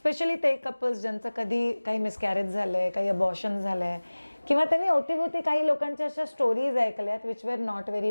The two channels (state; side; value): inverted; both; correlation -1.00